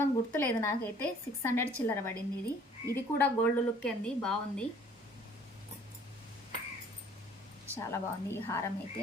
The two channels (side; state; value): both; normal; correlation 0.55